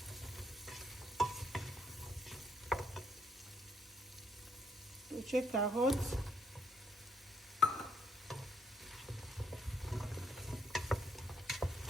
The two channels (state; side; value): normal; both; correlation 0.71